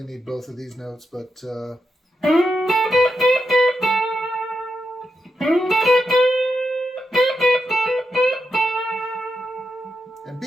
need both of these notes, but and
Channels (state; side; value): normal; both; correlation 0.86